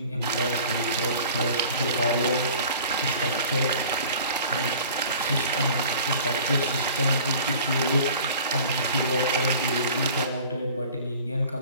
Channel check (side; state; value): both; inverted; correlation -0.45